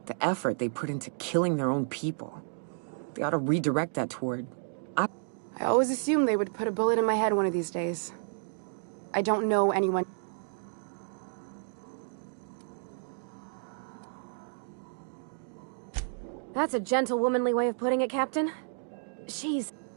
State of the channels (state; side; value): silent; left; digital silence